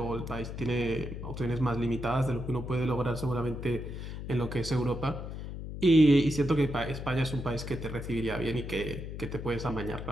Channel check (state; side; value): noise; left; hum, 7 dB below the sound